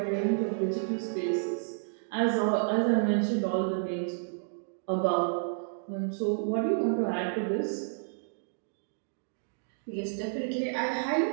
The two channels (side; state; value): left; silent; digital silence